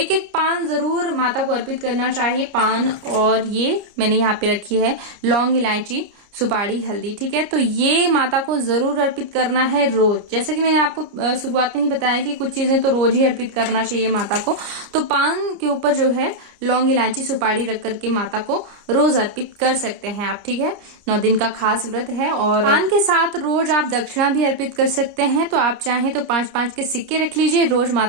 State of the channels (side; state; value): left; late; 29 ms